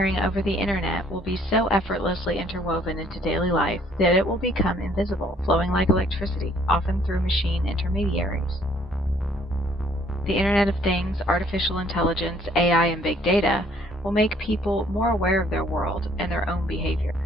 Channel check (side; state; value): both; normal; correlation 0.62